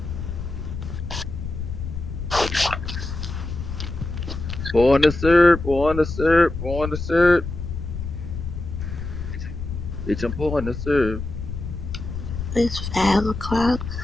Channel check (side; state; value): left; noise; rumble, 6 dB below the sound